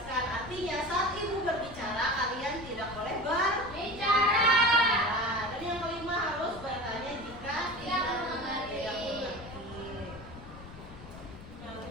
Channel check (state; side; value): noise; left; rumble, 15 dB below the sound